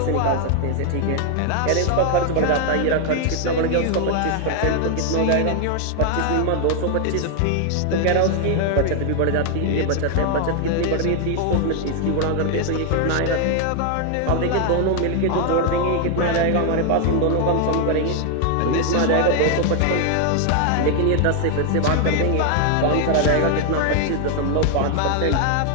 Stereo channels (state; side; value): different; both; correlation 0.00